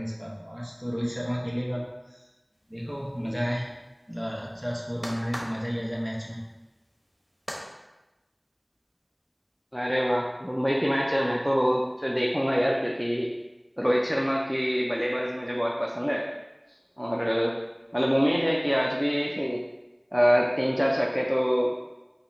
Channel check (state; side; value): identical; both; correlation 1.00